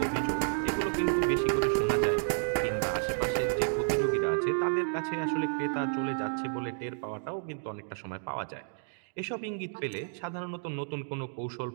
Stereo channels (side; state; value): left; silent; digital silence